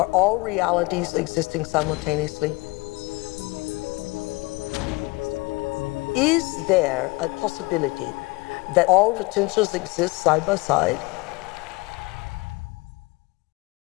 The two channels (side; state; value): right; quieter; 25.4 dB